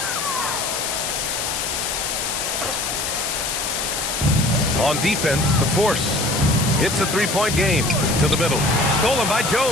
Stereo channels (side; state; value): left; noise; hiss, 2 dB below the sound